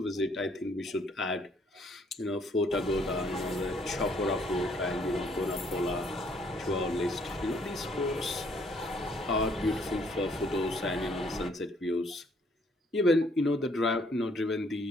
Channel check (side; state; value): both; normal; correlation 0.65